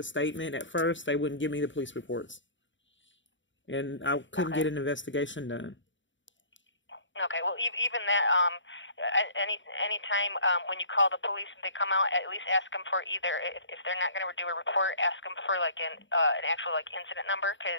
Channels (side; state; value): right; late; 0.55 ms